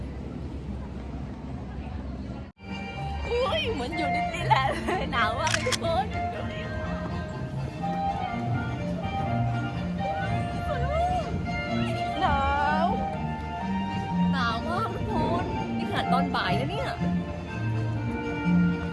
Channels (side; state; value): both; identical; correlation 1.00